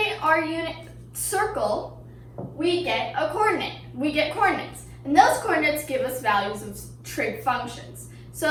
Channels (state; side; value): identical; both; correlation 1.00